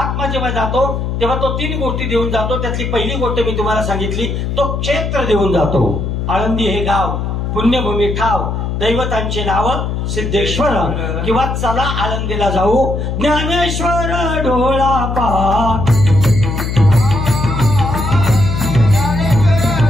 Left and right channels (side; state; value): left; noise; hum, 2 dB below the sound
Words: जेव्हा जातो तेव्हा तो 3 गोष्टी देऊन जातो. त्यातली पहिली गोष्ट मी तुम्हाला सांगितली, तो क्षेत्र देऊन जातो. आळंदी हे गाव, पुण्यभूमी ठाव, दैवतांचे नाव सिद्धेश्वर, किंवा चला आळंदीला जाऊ, ज्ञानेश्वर डोळा पहा,